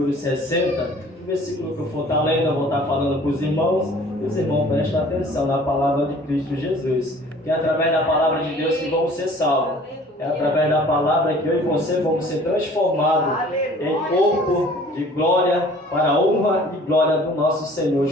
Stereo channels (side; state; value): both; normal; correlation 0.51